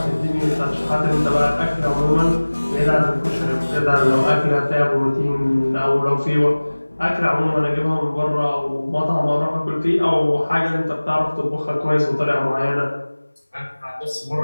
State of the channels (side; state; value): both; inverted; correlation -1.00